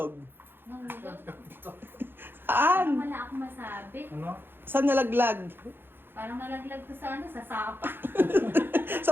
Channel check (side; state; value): left; late; 0.10 ms